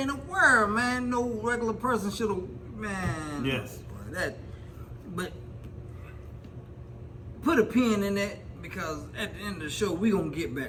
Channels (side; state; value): both; identical; correlation 1.00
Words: in the world, man. No regular person should have, man. Yes. But put a pin in that because at the end of the show we gonna get